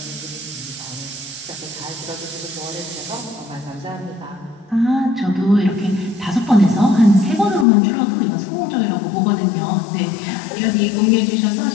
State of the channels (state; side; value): drops out; right; at 7.7 s